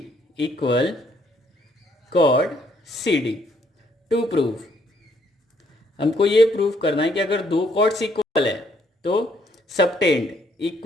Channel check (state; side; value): normal; both; correlation 0.68